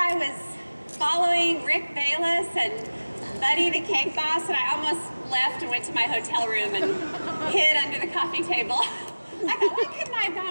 was following Rick Bayless and Buddy the Cake Boss, and I almost left and went to my hotel room and hid under the coffee table. I thought, why couldn't I have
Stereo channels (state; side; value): inverted; both; correlation -1.00